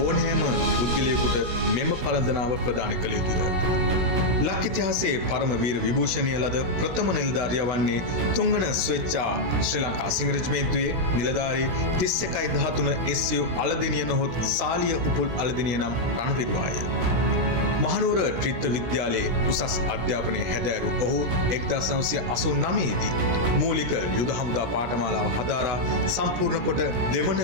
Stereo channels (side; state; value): left; late; 17 ms